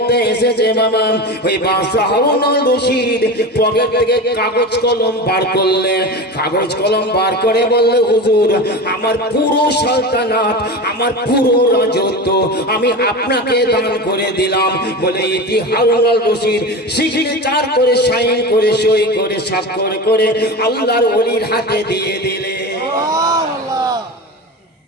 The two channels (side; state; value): both; normal; correlation 0.27